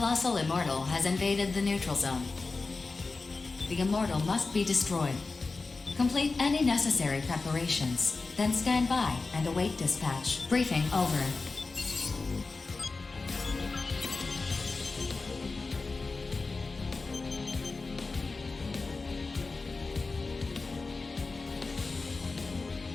immortal has invaded the neutral zone. The immortal must be destroyed. Complete any necessary preparations, then stand by and await dispatch. Briefing over.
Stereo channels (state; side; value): quieter; right; 3.9 dB